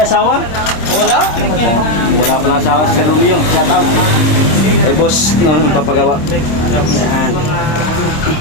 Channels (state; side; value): late; right; 26 ms